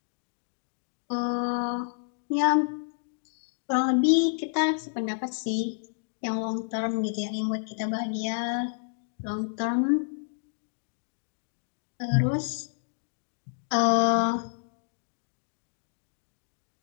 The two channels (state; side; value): silent; right; digital silence